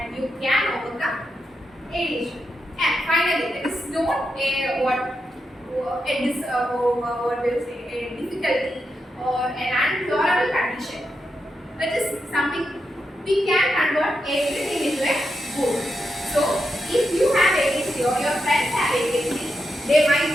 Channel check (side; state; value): both; normal; correlation 0.85